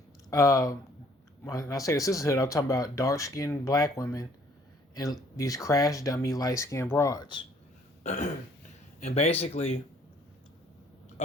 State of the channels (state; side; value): normal; both; correlation 0.60